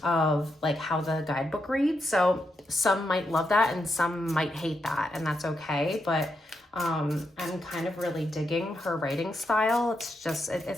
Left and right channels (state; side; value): normal; both; correlation 0.83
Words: of like how the guidebook reads. So some might love that and some might hate that, and that's okay. But I'm kind of really digging her writing style. It's